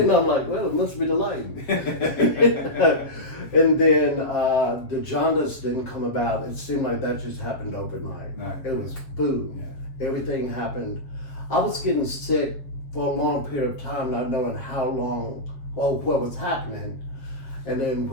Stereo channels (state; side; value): late; right; 7.5 ms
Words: I'm like, well, it must be the light. And then the jaundice didn't come about. It seemed like that just happened overnight. No. It was boom. Yeah. Everything happened. I was getting sick for a long period of time, not knowing how long or what was happening. And then